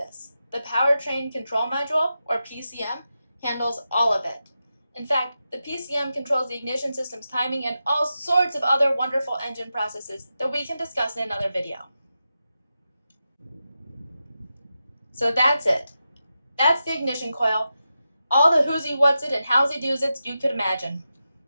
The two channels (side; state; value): both; inverted; correlation -0.89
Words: The Powertrain Control Module, or PCM, handles all of it. In fact, the PCM controls the ignition system's timing and all sorts of other wonderful engine processes that we can discuss in another video. So that's it. That's the ignition coil. All the who's-y, what's-it, and how's-y, do's-its you could imagine.